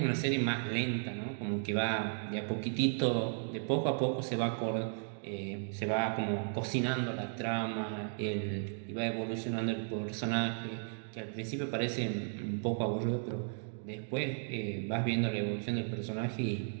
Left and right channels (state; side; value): silent; left; digital silence